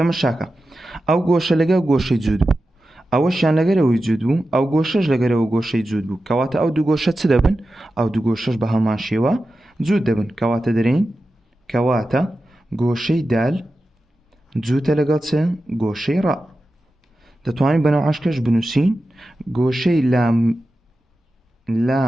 ئەو گۆشە لەگەڵ گۆشەی جووت بوو، ئەوەشیان لەگەرەوەی جووت بوو، ئەو گۆشەش لەگەرەوە گۆشەی جووت بوو، کەواتە ئەو دوو گۆشە چ دەبن؟ ئەو دوو گۆشەش بە هەمان شێوە جووت دەبن. کەواتە دەرێن کەواتە گۆشەی دال جووتە لەگەڵ چ؟ گۆشەی ڕا. دەتوانین بەناو عاشقش بنووسین گۆشەی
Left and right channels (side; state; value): both; normal; correlation 0.92